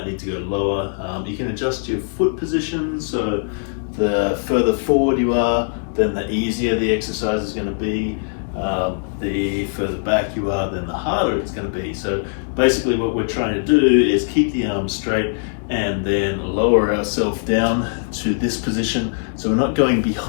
need to go lower. You can adjust your foot position, so the further forward you are, then the easier the exercise is going to be. The further back you are, then the harder it's going to be. So basically what we're trying to do is keep the arms straight and then lower ourselves down to this position. So we're not going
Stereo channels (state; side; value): silent; right; 65 dB below the other